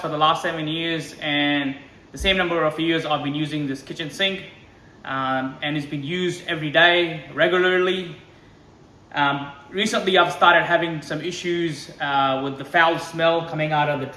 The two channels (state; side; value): identical; both; correlation 1.00